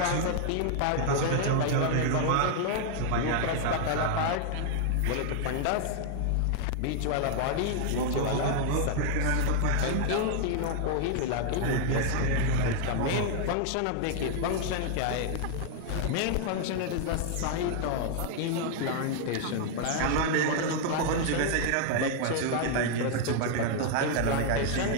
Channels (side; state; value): both; different; correlation 0.00